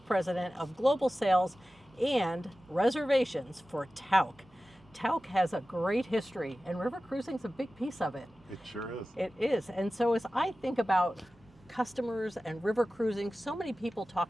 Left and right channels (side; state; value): both; normal; correlation 0.95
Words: of Global Sales and Reservations for Tauck. Tauck has a great history, and river cruising is a big piece of it. It sure is. It is. And so as I think about customers and river cruising, so many people